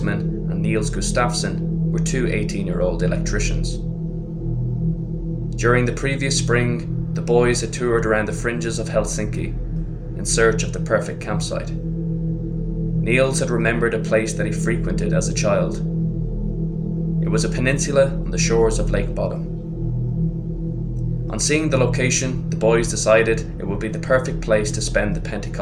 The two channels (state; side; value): identical; both; correlation 1.00